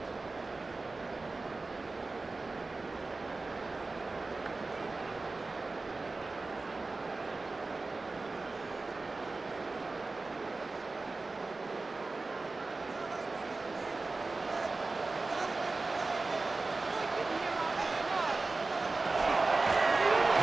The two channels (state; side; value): quieter; left; 3.6 dB